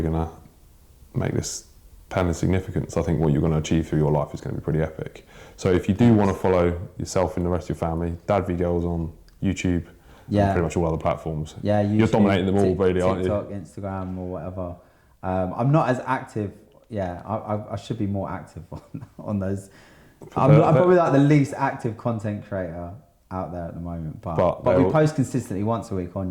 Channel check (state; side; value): identical; both; correlation 1.00